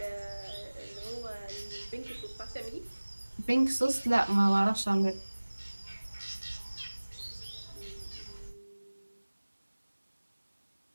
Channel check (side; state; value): both; inverted; correlation -1.00